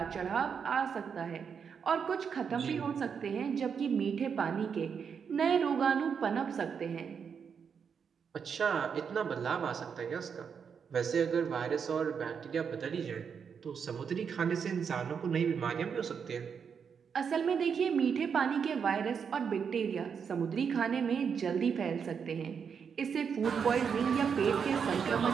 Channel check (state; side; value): quieter; left; 6.7 dB